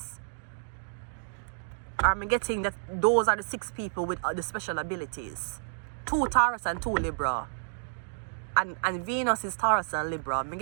Or I'm getting that those are the 6 people with the special abilities. 2 Taurus and 2 Libra. And Venus is Taurus and Libra. I'm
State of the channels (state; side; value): silent; left; digital silence